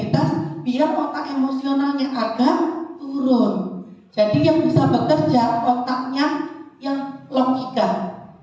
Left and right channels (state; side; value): identical; both; correlation 1.00